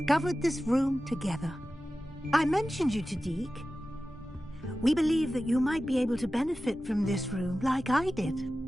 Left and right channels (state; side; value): normal; both; correlation 0.95